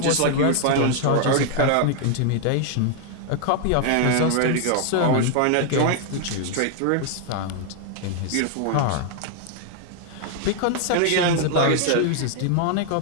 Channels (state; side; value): different; both; correlation 0.00